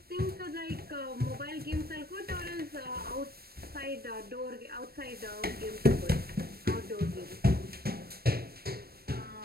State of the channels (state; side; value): late; left; 0.45 ms